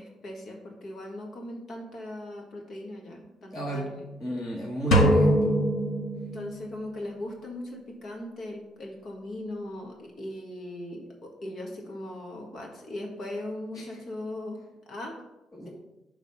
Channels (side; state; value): both; normal; correlation 0.63